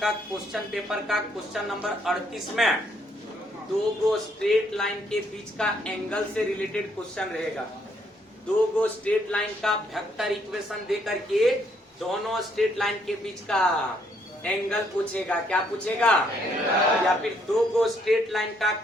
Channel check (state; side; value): normal; both; correlation 0.70